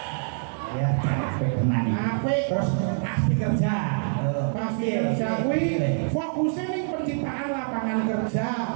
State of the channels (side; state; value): left; silent; digital silence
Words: Ya, capek tenan iki. Apik. Terus pasti kerja. Pasti kerja kuwi fokusnya ning penciptaan lapangan kerja,